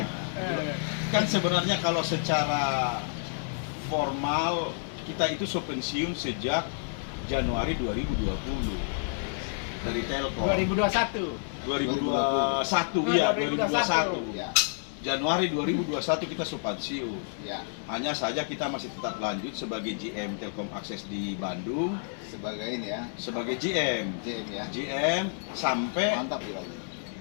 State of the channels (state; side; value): silent; right; 58 dB below the other